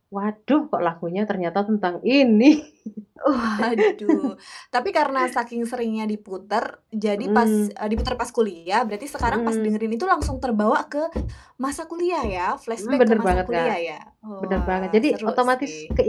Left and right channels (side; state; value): both; identical; correlation 1.00